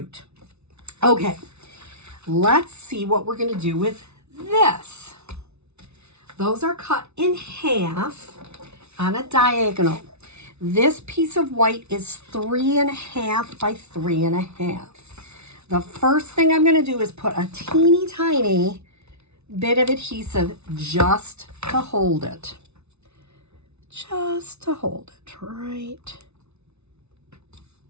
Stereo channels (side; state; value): left; late; 0.81 ms